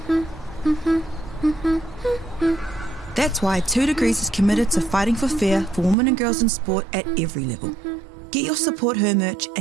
That's why 2 Degrees is committed to fighting for fair for women and girls in sport at every level. Get your Support Her merch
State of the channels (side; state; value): left; drops out; at 6.0 s